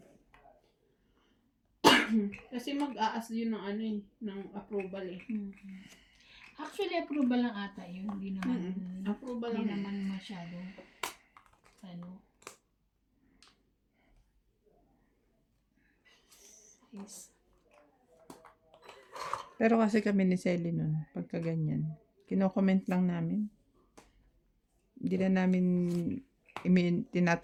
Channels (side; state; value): both; identical; correlation 1.00